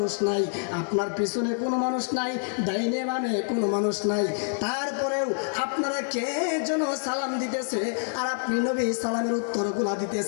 নাই, আপনার পিছনে কোনো মানুষ নাই, ডাইনে বামে কোনো মানুষ নাই, তারপরেও আপনারা কে যেন সালাম দিতেছে আর আপনি নবী সালামের উত্তরগুলা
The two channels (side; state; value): right; silent; digital silence